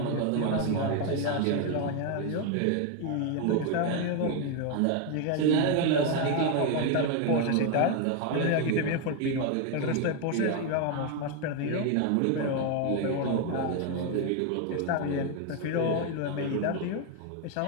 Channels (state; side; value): different; both; correlation 0.01